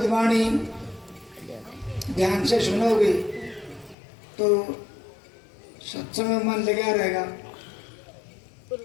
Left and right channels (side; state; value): right; drops out; at 4.0 s